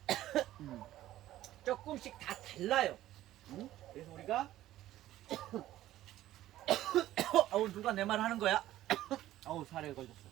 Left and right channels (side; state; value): left; quieter; 14.2 dB